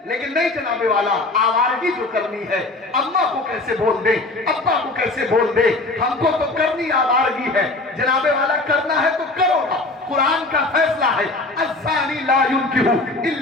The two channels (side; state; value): right; quieter; 3.1 dB